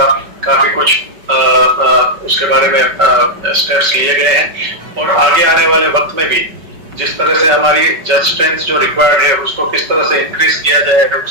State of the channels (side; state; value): left; late; 5.3 ms